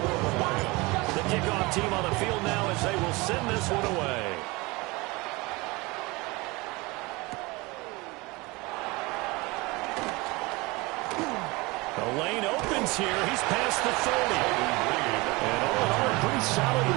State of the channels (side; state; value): left; quieter; 24.1 dB